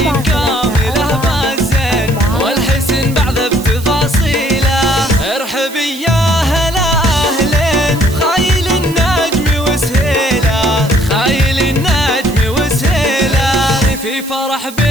كاملة بالزين والحسن بعد بتفاصيله. ارحبي يا هلا أهلين، خايل النجم وسهيله، خايل النجم وسهيله، في فرح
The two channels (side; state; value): right; noise; hiss, 16 dB below the sound